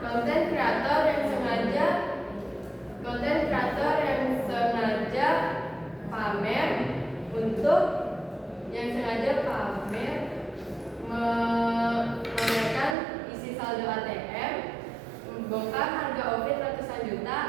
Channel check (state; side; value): drops out; left; at 13.0 s